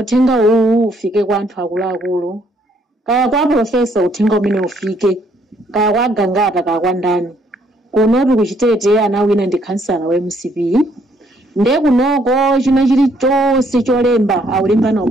uwu ufike kwa anthu akuluakulu kaya kwa profesa uthenga umene ufike kaya kwa gangata kaya kwa ndani kuno tuli kuchitete anawina ndi kansala wa MCP nde kunoko china chilichonse cholemba aulemba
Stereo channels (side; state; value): both; normal; correlation 0.68